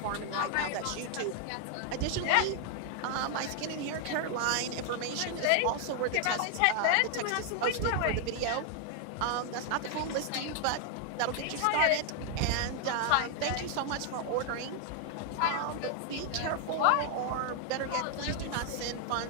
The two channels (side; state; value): both; different; correlation 0.00